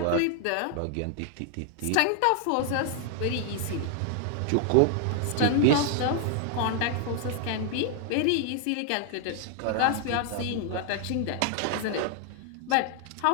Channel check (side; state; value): both; different; correlation 0.00